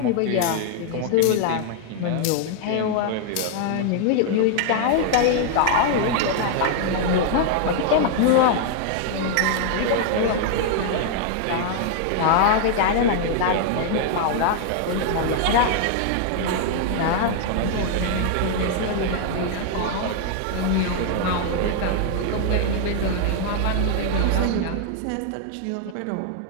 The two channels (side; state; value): both; different; correlation 0.00